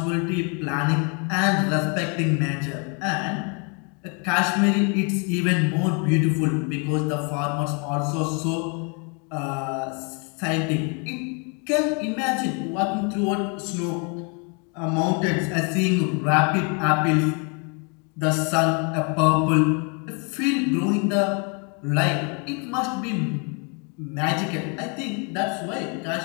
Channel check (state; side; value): quieter; right; 35.7 dB